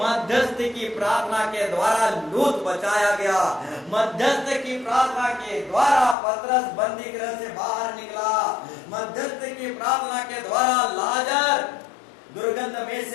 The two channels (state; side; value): drops out; right; at 6.2 s